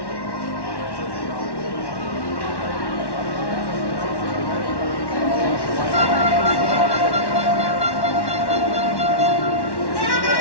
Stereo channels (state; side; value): late; right; 1.1 ms